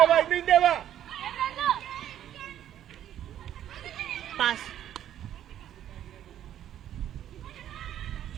ಬಾ, ಹಿಂದೆ ಬಾ. ಪಾಸ್.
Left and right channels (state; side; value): quieter; left; 11.1 dB